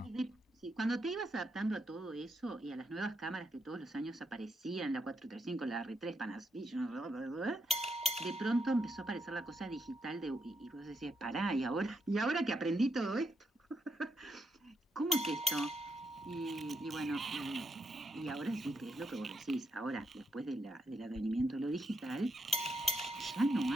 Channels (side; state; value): both; normal; correlation 0.80